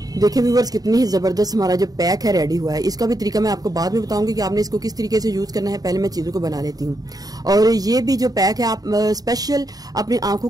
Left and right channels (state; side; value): late; left; 0.18 ms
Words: देखिए व्यूअर्स, कितनी ही जबरदस्त हमारा जो पैक है रेडी हुआ है। इसका भी तरीका मैं आपको बाद में बताऊंगी कि आपने इसको किस तरीके से यूज करना है। पहले मैं चीजों को बना लेती हूँ। और ये भी जो पैक है, आप स्पेशल अपनी आंखों